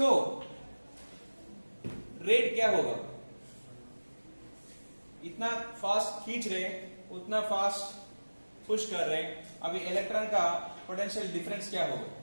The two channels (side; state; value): both; inverted; correlation -1.00